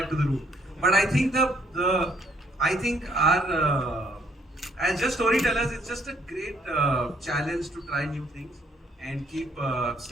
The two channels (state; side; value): normal; both; correlation 0.67